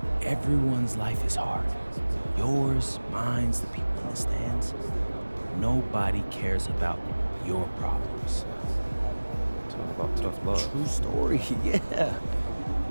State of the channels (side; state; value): both; inverted; correlation -1.00